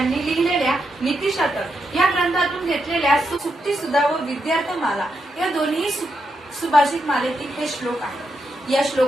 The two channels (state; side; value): normal; both; correlation 0.83